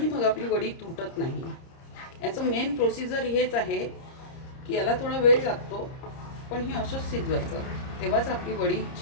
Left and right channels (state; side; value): late; right; 30 ms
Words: मग आपली वडी तुटत नाही. याचं मेन प्रोसिजर हेच आहे की याला थोडा वेळ लागतो, पण हे असंच शिजवायचं, तेव्हाच आपली वडी